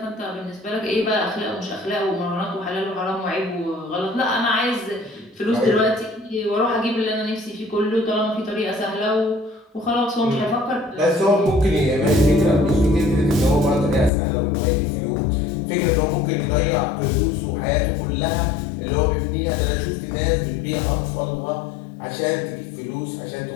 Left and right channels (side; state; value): right; drops out; at 14.1 s